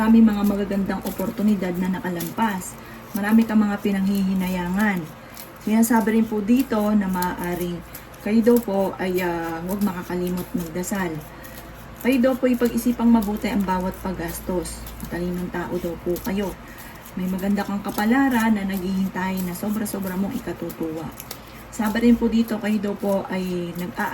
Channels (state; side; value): identical; both; correlation 1.00